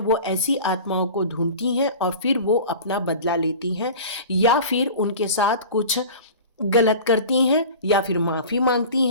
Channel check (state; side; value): inverted; both; correlation -0.37